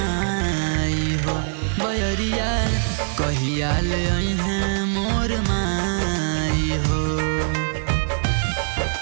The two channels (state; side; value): silent; left; 64 dB below the other